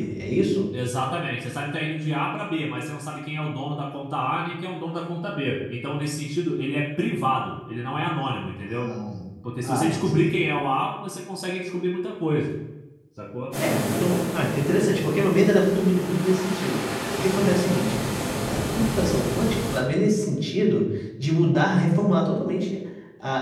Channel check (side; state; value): both; identical; correlation 1.00